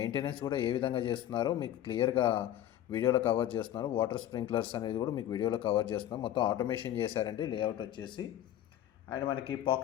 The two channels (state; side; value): quieter; right; 12.0 dB